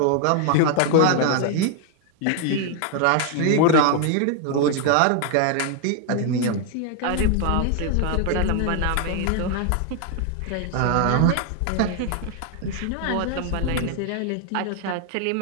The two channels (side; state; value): both; different; correlation 0.00